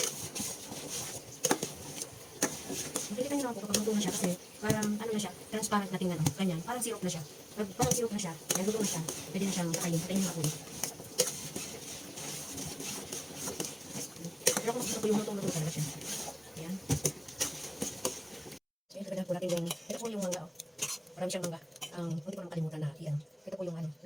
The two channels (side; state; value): both; identical; correlation 1.00